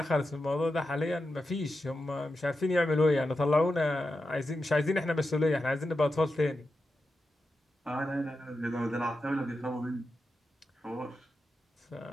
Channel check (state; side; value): normal; both; correlation 0.89